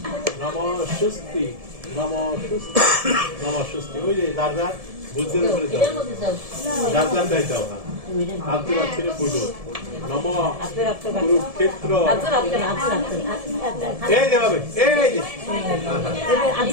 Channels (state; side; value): late; left; 1.7 ms